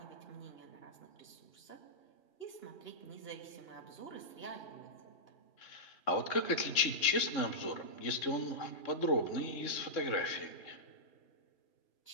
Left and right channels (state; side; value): late; right; 3.6 ms